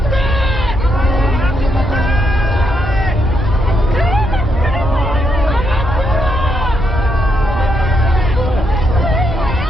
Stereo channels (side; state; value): both; normal; correlation 0.78